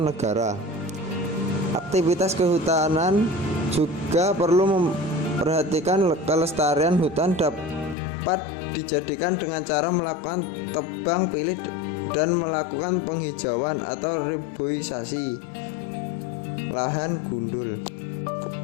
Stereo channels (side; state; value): right; drops out; at 8.0 s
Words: negara. Aktivitas kehutanan juga perlu memperhatikan kelestarian hutan dapat dijadikan dengan cara melakukan tebang pilih dan melakukan penghijauan atau reboisasi lahan gundul.